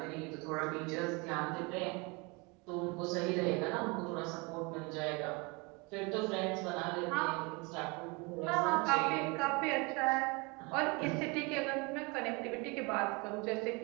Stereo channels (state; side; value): quieter; left; 28.2 dB